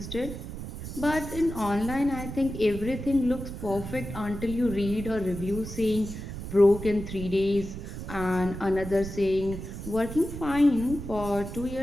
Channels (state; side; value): noise; right; rumble, 9 dB below the sound